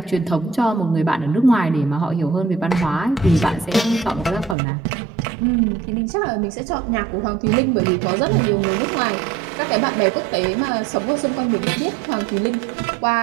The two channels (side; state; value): left; drops out; at 4.5 s